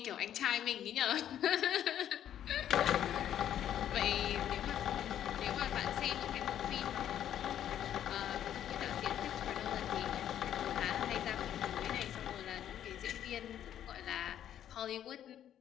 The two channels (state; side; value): quieter; right; 10.6 dB